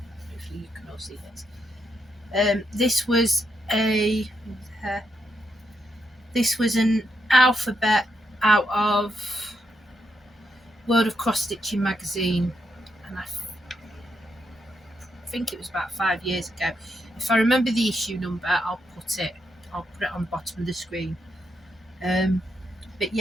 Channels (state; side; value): normal; both; correlation 0.81